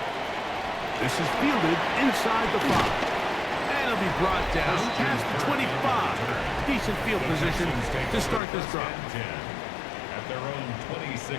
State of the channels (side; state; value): right; drops out; at 8.4 s